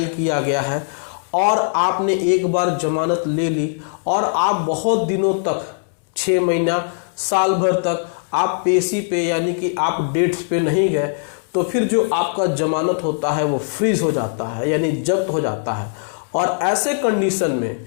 किया गया है और आपने एक बार जमानत ले ली और आप बहुत दिनों तक 6 महीना साल भर तक आप पेशी पे यानी कि आप डेट्स पे नहीं गए, तो फिर जो आपका जमानत होता है वो फ्रीज हो जाता है यानी जब्त हो जाता है। और ऐसे कंडीशन में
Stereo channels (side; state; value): right; silent; digital silence